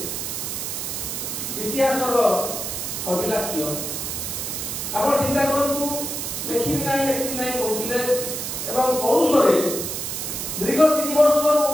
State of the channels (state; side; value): noise; right; hiss, 4 dB below the sound